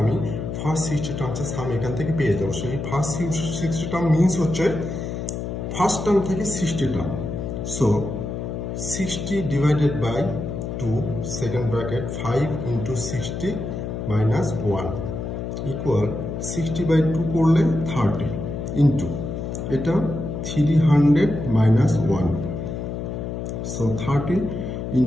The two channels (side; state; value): left; noise; hum, 5 dB below the sound